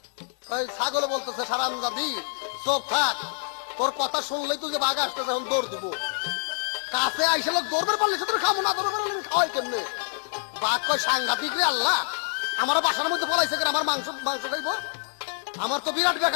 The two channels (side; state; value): right; silent; digital silence